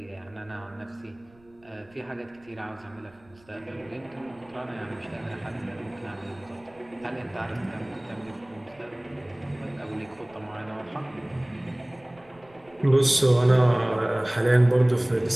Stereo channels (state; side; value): noise; right; rumble, 29 dB below the sound